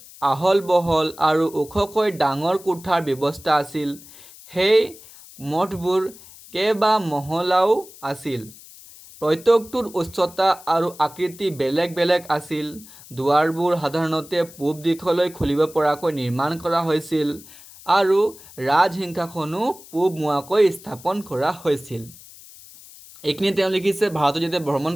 আহল বহল আৰু ওখকৈ ডাঙৰ কোঠাৰ ব্যৱস্থা আছিল। সেই মঠবোৰ কেইবা মহলাও আছিল। প্ৰত্যেকটোৰ উচ্চতা আৰু আকৃতি বেলেগ বেলেগ আছিল। দুৱাৰবোৰ সাধাৰণতে পূব দিশলৈ খুলিব পৰাকৈ নিৰ্মাণ কৰা হৈছিল আৰু ৰাজসিংহাসনো পূব মুৱাকৈ স্থাপন কৰা হৈছিল। এইখিনি তেওঁ লিখিছে। ভাৰতত যেতিয়া ভ্ৰমণ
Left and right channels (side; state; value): left; noise; hiss, 20 dB below the sound